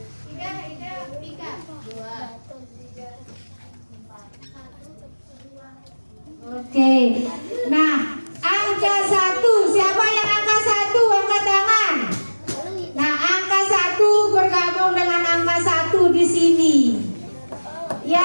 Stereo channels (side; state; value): both; inverted; correlation -1.00